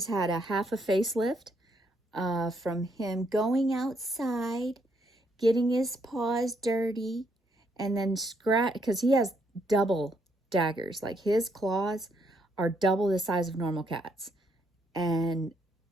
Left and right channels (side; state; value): both; normal; correlation 0.73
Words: had a half a facelift from him going outside, getting his paws dirty, and then scratch, because he has double daggers. Like his claws are double the size of normal cats, and